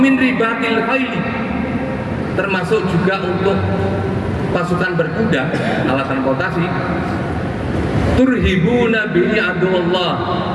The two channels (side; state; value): both; identical; correlation 1.00